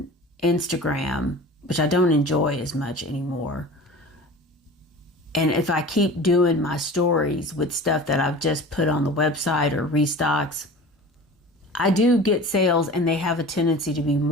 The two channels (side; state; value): both; normal; correlation 0.38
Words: Instagram, which I don't enjoy as much anymore, and if I keep doing my stories with stuff that I've just put on the website or restocks, I do get sales, and they have a tendency to be